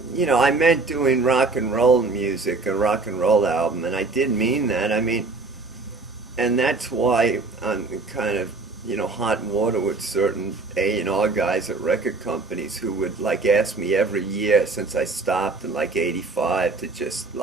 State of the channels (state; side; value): quieter; left; 3.7 dB